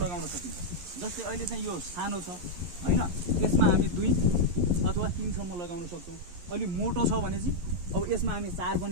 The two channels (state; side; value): late; left; 11 ms